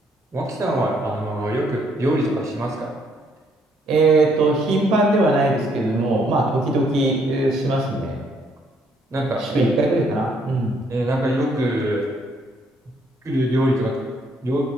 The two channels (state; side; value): normal; both; correlation 0.69